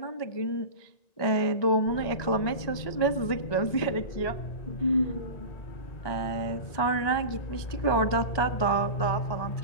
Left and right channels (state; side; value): late; right; 1.9 ms